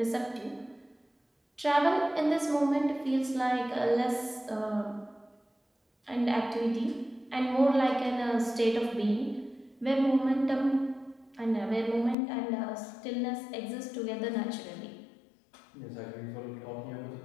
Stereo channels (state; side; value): drops out; right; at 12.2 s